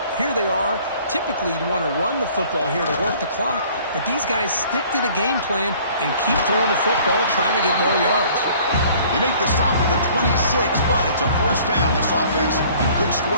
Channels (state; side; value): inverted; both; correlation -0.54